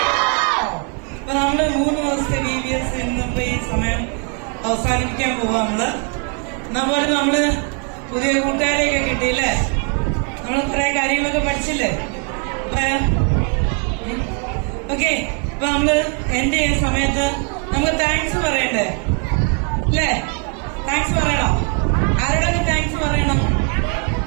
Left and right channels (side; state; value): left; quieter; 38.0 dB